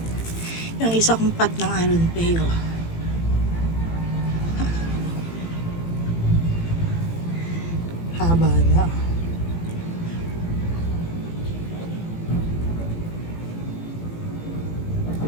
Yung isa kong pat ng Aron Peo. Haba na.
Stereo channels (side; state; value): right; late; 18 ms